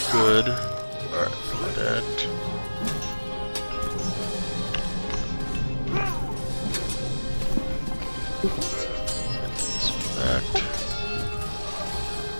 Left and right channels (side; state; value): both; inverted; correlation -1.00